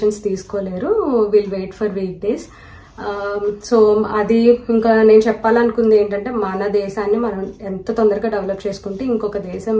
తీసుకోలేరు. Will wait for weekdays. So అది ఇంకా నేను చెప్పాలనుకుంది ఏంటంటే మన దేశాన్ని మనం ఎంత తొందరగా డెవలప్ చేసుకుంటే ఇంకొక దేశం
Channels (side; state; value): both; identical; correlation 1.00